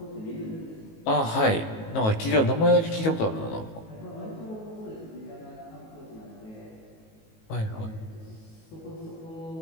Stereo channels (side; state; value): right; late; 19 ms